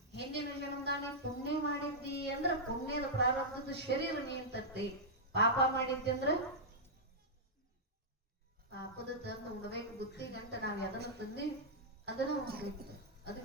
ಹಿಂದಿನ ಜನ್ಮದ ನೀ ಪುಣ್ಯ ಮಾಡಿದ್ದಿ ಅಂದ್ರ ಪುಣ್ಯದ ಪ್ರಾರಬ್ಧದ ಶರೀರ ನೀನ್ ತರ್ತಿ. ಪಾಪ ಮಾಡಿದ್ದಿ ಅಂದ್ರ ಪಾಪದ ತಂದು ಉಣ್ಬೇಕು. ಬುತ್ತಿ ಗಂಟ ನಾವ್ ಎದನ್ನ ತಂದಿ ಅದನ್ನ ಉಣ್ಬೇಕು.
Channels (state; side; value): normal; both; correlation -0.09